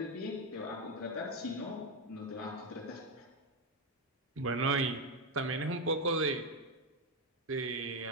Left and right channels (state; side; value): normal; both; correlation 0.07